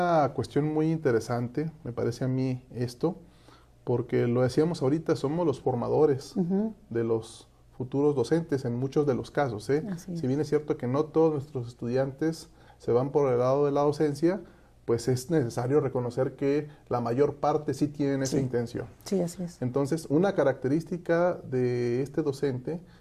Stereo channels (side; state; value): both; identical; correlation 1.00